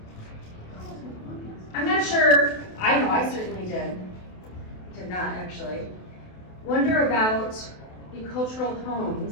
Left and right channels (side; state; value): right; late; 28 ms